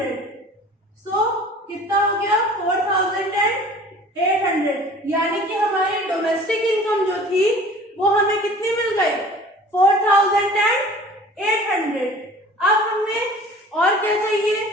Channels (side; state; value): both; normal; correlation 0.46